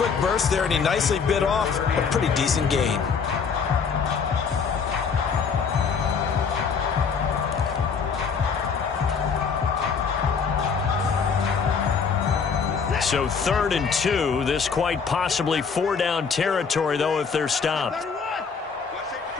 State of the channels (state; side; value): quieter; right; 5.8 dB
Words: burst there, and he nicely bit off a pretty decent gain. So 3rd and 2, this quite possibly 4-down territory, though, if they're stopped.